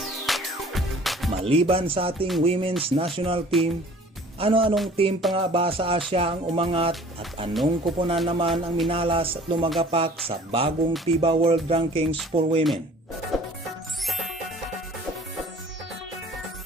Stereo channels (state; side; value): normal; both; correlation 0.50